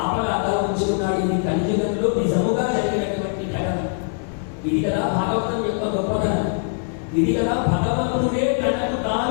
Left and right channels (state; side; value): silent; right; 64 dB below the other